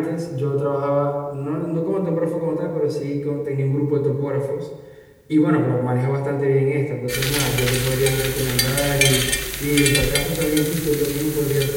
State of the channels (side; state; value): both; identical; correlation 1.00